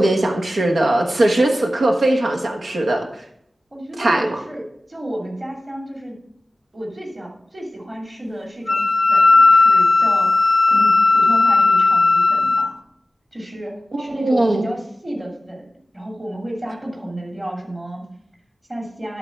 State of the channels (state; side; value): normal; both; correlation 0.96